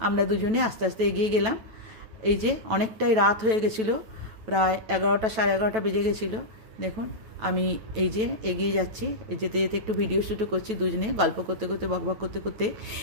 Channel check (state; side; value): late; left; 9.1 ms